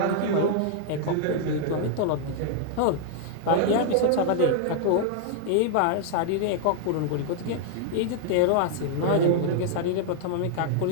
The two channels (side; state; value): both; different; correlation -0.01